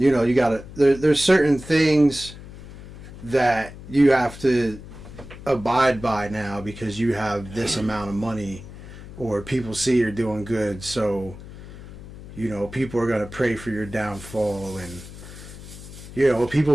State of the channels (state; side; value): noise; left; hum, 15 dB below the sound